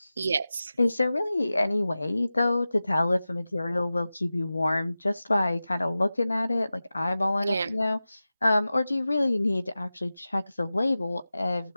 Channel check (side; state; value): both; inverted; correlation -0.95